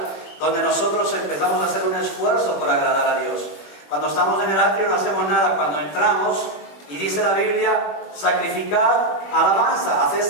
donde nosotros empezamos a hacer un esfuerzo por agradar a Dios. Cuando estamos en el atrio no hacemos nada. Cuando entramos, y dice la Biblia, sacrificad alabanza, haced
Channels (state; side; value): late; right; 21 ms